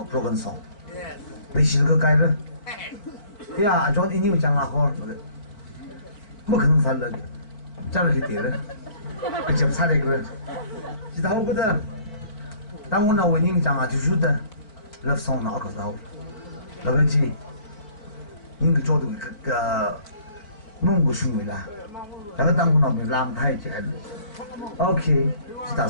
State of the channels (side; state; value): right; late; 4.6 ms